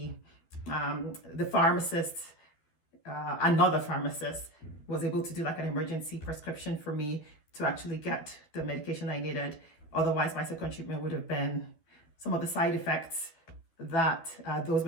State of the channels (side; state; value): right; late; 12 ms